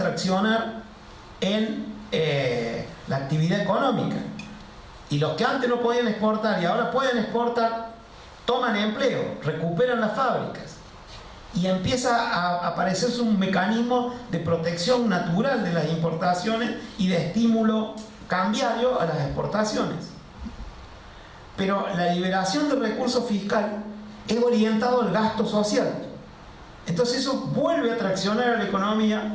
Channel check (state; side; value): identical; both; correlation 1.00